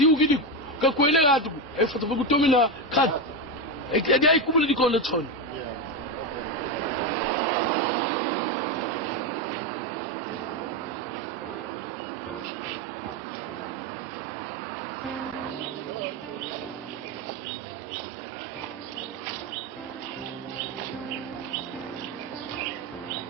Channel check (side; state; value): both; normal; correlation 0.12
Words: gidi ka kwele gatu foto boku tomina kat dai kubuli dikole chon.